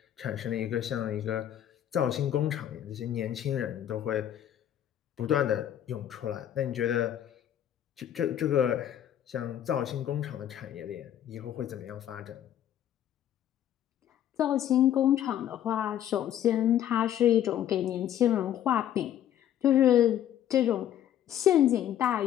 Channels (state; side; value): quieter; right; 11.0 dB